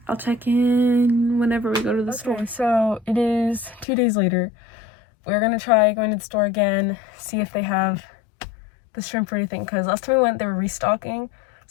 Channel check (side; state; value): right; drops out; at 3.9 s